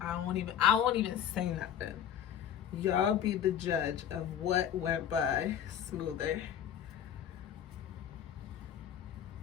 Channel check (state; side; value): quieter; right; 9.5 dB